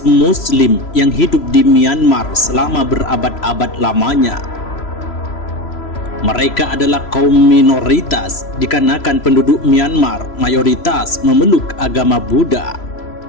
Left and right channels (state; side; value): late; right; 3.0 ms